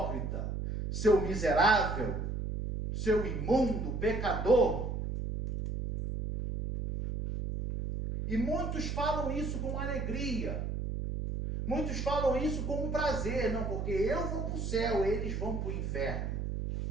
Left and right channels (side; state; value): right; noise; hum, 3 dB below the sound